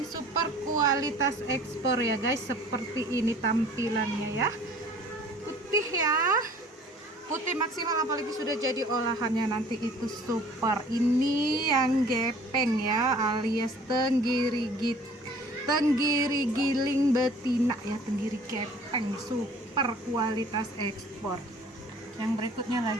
super kualitas ekspor ya guys. Seperti ini tampilannya ya. Putih ya, putih maksimal, apalagi sudah jadi olahannya nanti itu super. Ini yang gepeng ya, alias tenggiri giling betina ya, tenggiri gepeng super kualitas ekspor. Yang berikutnya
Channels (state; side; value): normal; both; correlation 0.50